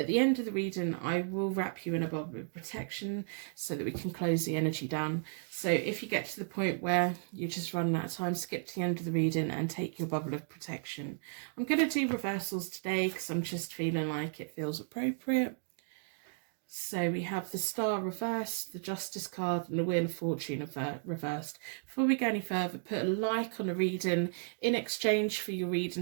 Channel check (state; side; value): silent; left; digital silence